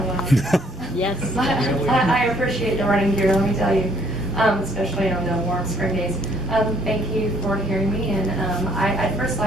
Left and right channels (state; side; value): normal; both; correlation 0.65